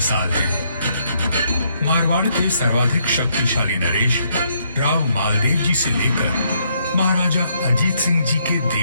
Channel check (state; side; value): inverted; both; correlation -0.72